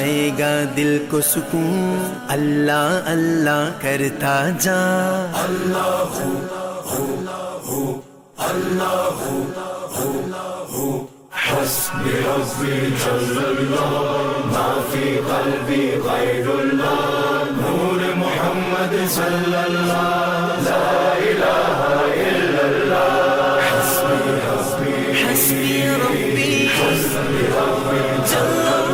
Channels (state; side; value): identical; both; correlation 1.00